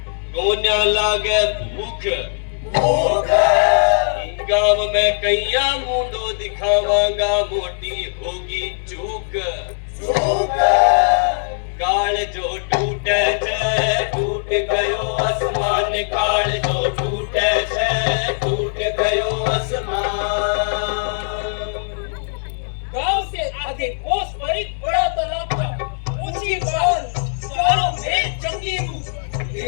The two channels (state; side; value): silent; right; 66 dB below the other